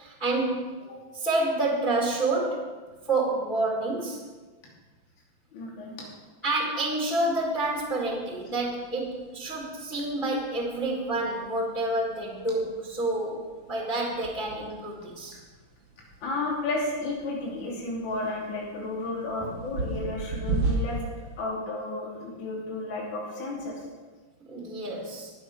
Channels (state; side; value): late; right; 5.9 ms